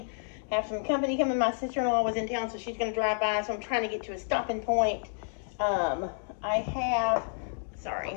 have some company coming. My sister-in-law was in town, so she's going to drive by. So I'm trying to get to a stopping point. I have, sorry,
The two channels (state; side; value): silent; right; digital silence